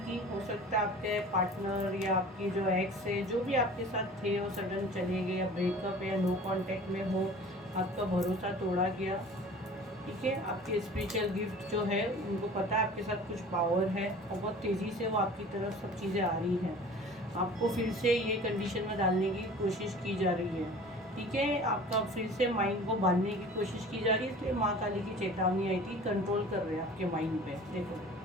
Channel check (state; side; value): normal; both; correlation 0.43